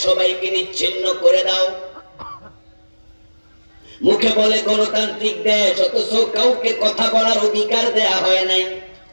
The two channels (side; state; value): both; inverted; correlation -1.00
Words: সবাইকে নিচ্ছিন্ন করে দাও। মুখে বলে গণতান্ত্রিক দেশ, অথচ কাউকে কথা বলার অধিকার দেয়া হয় নাই,